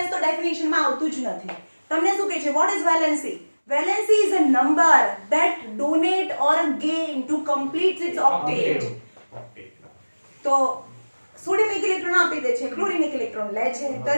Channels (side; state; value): both; inverted; correlation -1.00